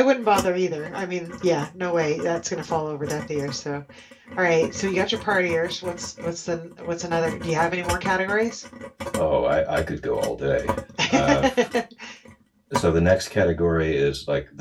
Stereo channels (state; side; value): identical; both; correlation 1.00